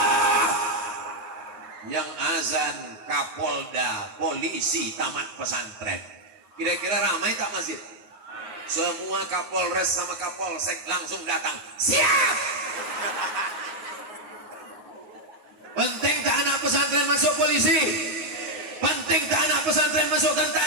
Yang azan Kapolda, polisi, tamat pesantren. Kira-kira ramai tak masjid? Semua Kapolres sama Kapolsek langsung datang. Siap! Penting tak anak pesantren masuk polisi? Penting tak anak pesantren masuk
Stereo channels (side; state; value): left; late; 9.5 ms